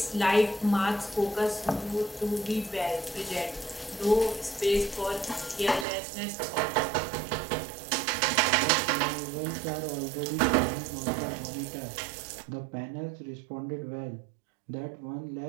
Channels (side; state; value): left; drops out; at 5.9 s